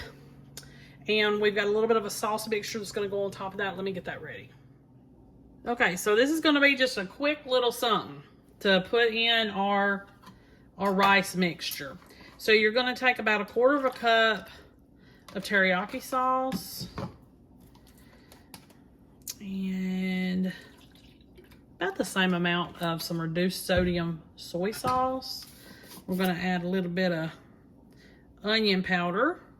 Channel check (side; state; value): both; identical; correlation 1.00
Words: And we've got a little bit of a sauce mixture that's gonna go on top of that. Let me get that ready. Okay, so this is gonna be just a quick little something to put in our rice mixture. So you're gonna take about 1/4 cup of teriyaki sauce. And about the same amount of some reduced sodium soy sauce. We're gonna add a little bit of onion powder.